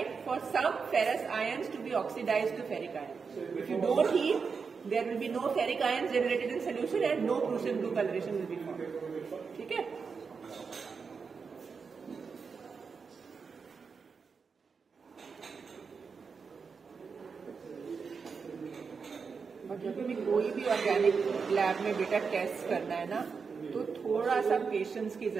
for some ferrous ions to be oxidised to ferric ion. If you don't heat, there will be no ferric ions generated in solution and no Prussian blue coloration will be formed. ठीक है. और जब भी कोई भी ऑर्गेनिक लैब में बेटा टेस्ट करना है ना, तो थोड़ा सा पेशेंस की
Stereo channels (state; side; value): quieter; left; 5.4 dB